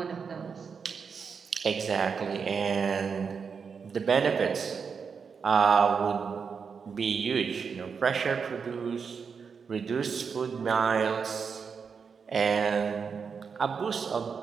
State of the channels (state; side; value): quieter; left; 5.9 dB